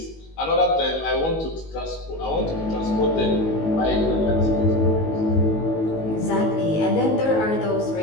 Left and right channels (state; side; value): late; right; 19 ms